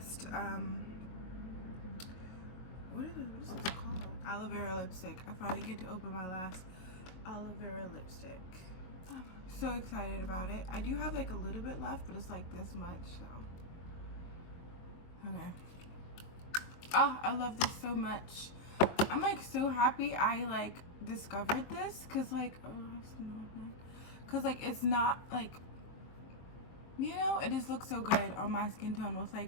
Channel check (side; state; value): right; late; 23 ms